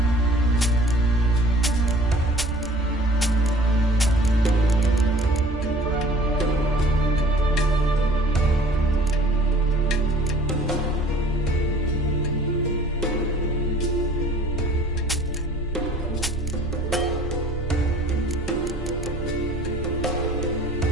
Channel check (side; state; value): both; normal; correlation 0.50